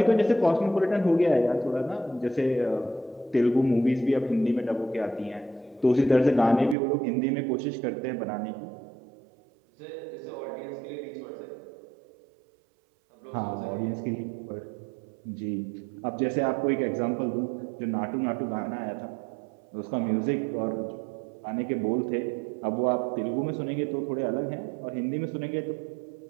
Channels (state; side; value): drops out; left; at 6.8 s